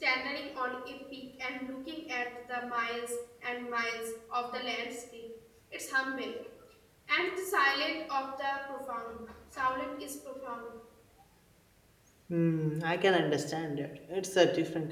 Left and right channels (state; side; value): identical; both; correlation 1.00